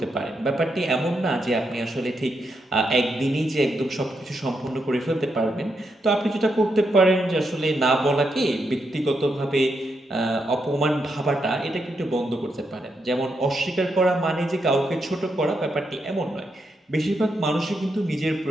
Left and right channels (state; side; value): normal; both; correlation 0.82